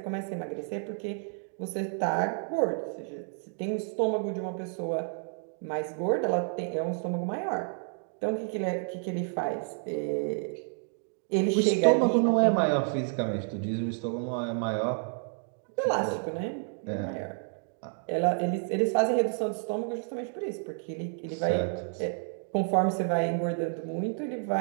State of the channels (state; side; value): silent; left; 56 dB below the other